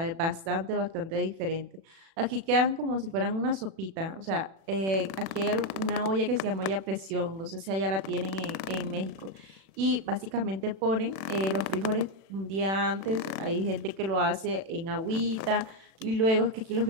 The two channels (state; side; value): late; left; 36 ms